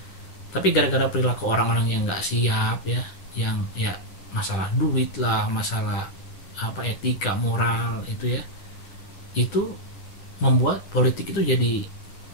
Tapi gara-gara perilaku orang-orang yang nggak siap ya, yang ya masalah duit lah, masalah etika, moral itu ya, itu membuat politik itu jadi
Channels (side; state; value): right; late; 10 ms